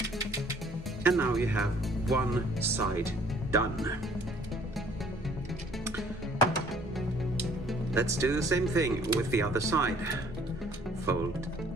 And now you have one side done. Let's do the same thing with the other side. Fold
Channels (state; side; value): normal; both; correlation 0.58